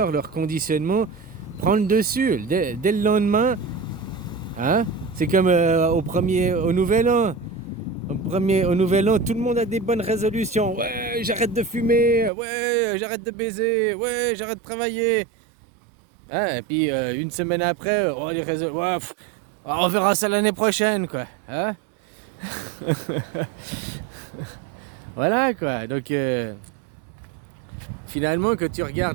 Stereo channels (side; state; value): left; drops out; at 12.3 s